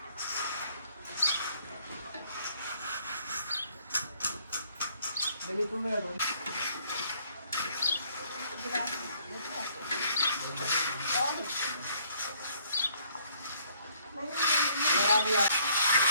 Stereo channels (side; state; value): both; inverted; correlation -0.64